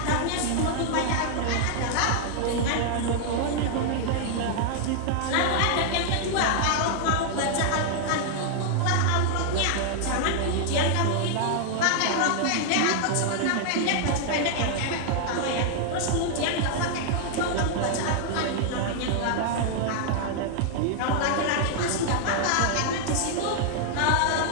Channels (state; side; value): different; both; correlation -0.01